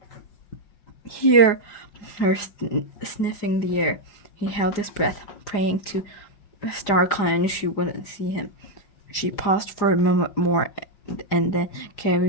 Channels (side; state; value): right; late; 4.9 ms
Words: hear her sniffing the air. He held his breath, praying to StarClan she wouldn't see him. She paused for a moment more and then